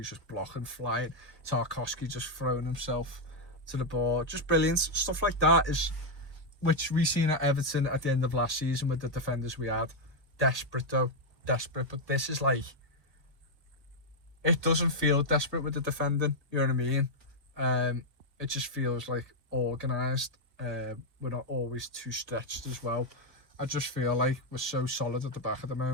just blocking, flying. Tarkowski just throwing himself to the ball. Just brilliant. Stuff like that is, which we seen at Everton at the end of last season with the defenders we had. Desperate though. Desperate. But this is like, it doesn't feel desperate with the defending. You know what I mean? It just feels like organised. We're not always too stretched as well. I just feel like we're so solid at the back at the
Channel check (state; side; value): late; left; 1.7 ms